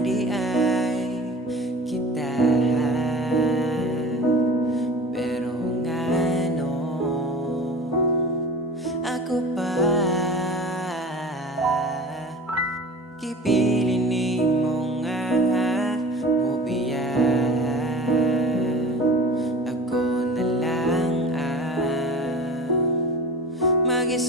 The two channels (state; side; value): normal; both; correlation 0.38